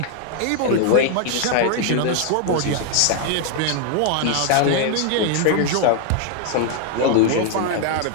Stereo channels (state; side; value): different; both; correlation 0.00